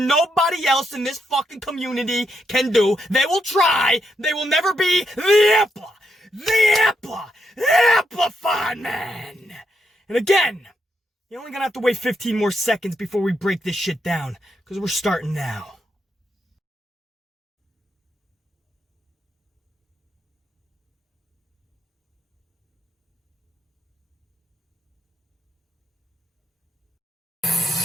else in this fucking community can do. They will try. They will never be the amplified man. And again, you're only going to have to wait 15 more seconds before we break this shit down, because we're starting now.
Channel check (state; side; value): normal; both; correlation 0.80